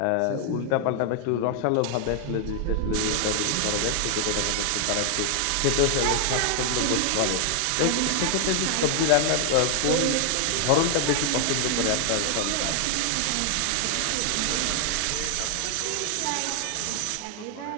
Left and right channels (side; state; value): both; different; correlation 0.00